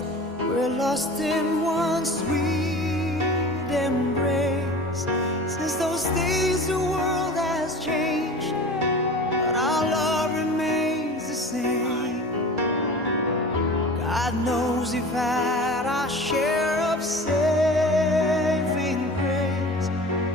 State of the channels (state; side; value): normal; both; correlation 0.37